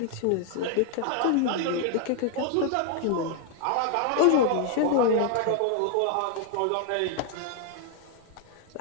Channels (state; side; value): different; both; correlation 0.00